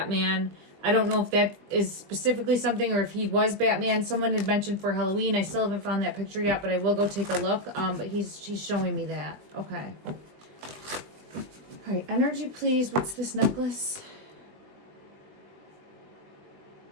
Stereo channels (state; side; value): late; left; 20 ms